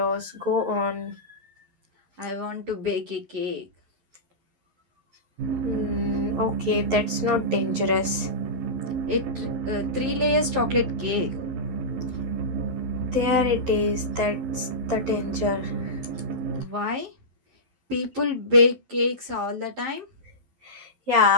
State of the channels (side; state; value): left; late; 11 ms